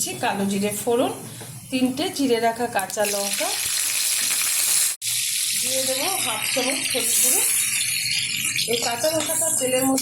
কালো জিরে ফোড়ন, 3টে চিড়ে রাখা কাঁচা লঙ্কা, দিয়ে দেবো 1/2 চামচ হলুদ গুঁড়ো। এই কাঁচা লঙ্কাটা তেলের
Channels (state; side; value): identical; both; correlation 1.00